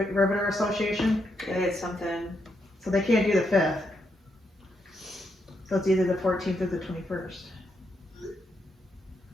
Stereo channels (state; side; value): normal; both; correlation 0.80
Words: Association? They had something. So they can't do the 5th. So it's either the 14th or the 21st.